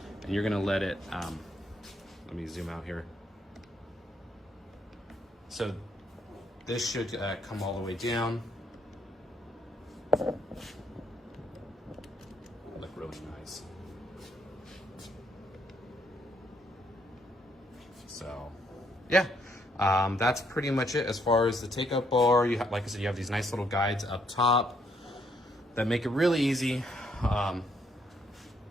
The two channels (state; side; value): normal; both; correlation 0.71